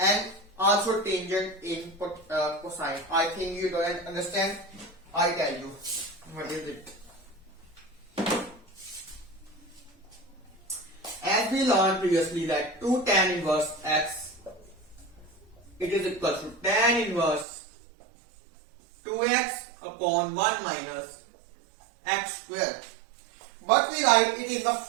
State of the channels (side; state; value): left; drops out; at 17.4 s